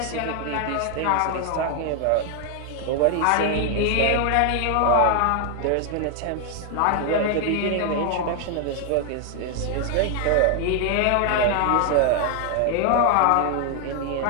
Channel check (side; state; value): both; different; correlation 0.00